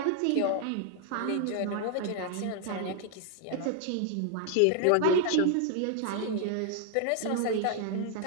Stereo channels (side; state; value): both; different; correlation 0.00